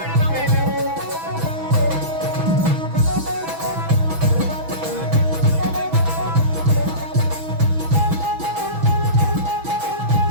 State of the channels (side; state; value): left; late; 6.1 ms